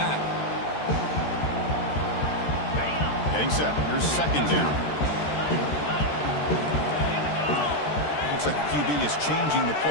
Getting set. Here's 2nd down. Looks like the QB is changing the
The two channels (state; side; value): late; right; 13 ms